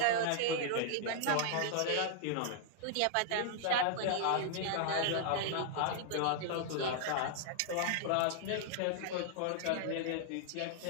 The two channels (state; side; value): different; both; correlation -0.01